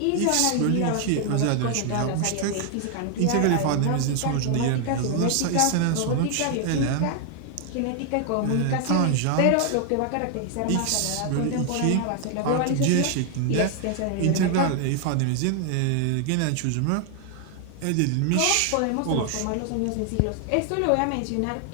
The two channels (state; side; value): different; both; correlation 0.00